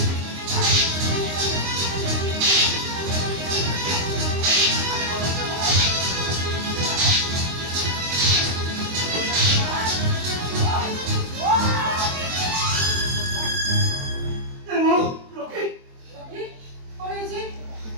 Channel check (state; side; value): late; left; 23 ms